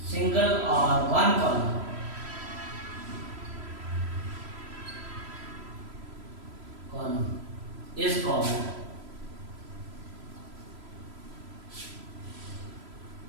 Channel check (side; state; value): left; late; 3.0 ms